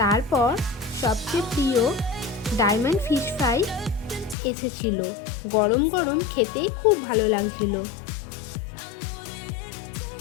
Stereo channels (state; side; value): drops out; right; at 4.4 s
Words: তারপর সবচেয়ে প্রিয় ডায়মন্ড ফিশ ফ্রাই এসেছিল। গরম গরম খেতে খুব ভালো লাগছিল।